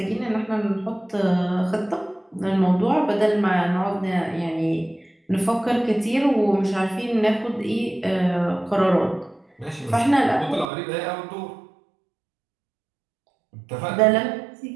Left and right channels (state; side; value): drops out; left; at 10.7 s